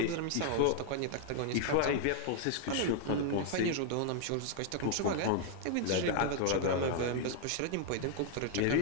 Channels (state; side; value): different; both; correlation 0.00